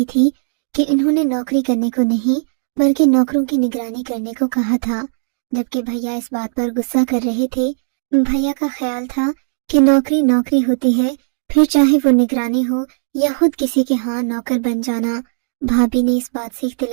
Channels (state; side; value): silent; left; digital silence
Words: थी कि इन्होंने नौकरी करने को नहीं बल्कि नौकरों की निगरानी करने को कहा था, जबकि भैया इस बात पर गुस्सा कर रहे थे। भैया का ख्याल था कि नौकरी नौकरी होती है, फिर चाहे वो निगरानी हो या खुद किसी के यहाँ नौकर बन जाना। भाभी ने इस बात से